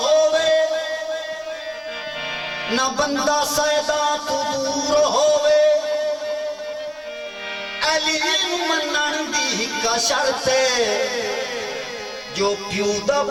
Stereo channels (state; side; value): identical; both; correlation 1.00